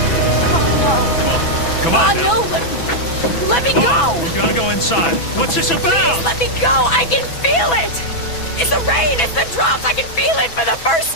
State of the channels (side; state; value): right; late; 6.0 ms